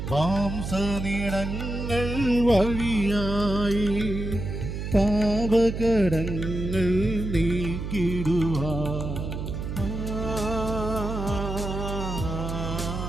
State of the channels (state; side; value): noise; right; hum, 5 dB below the sound